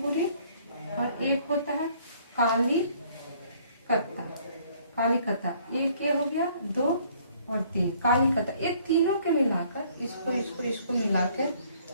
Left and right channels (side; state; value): both; inverted; correlation -0.61